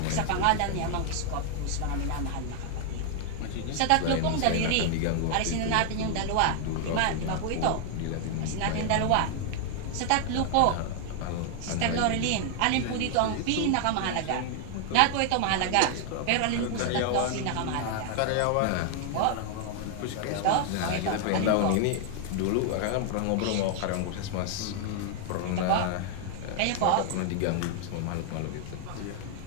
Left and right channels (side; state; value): both; different; correlation 0.00